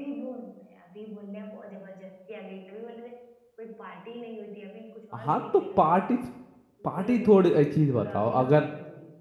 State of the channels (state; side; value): identical; both; correlation 1.00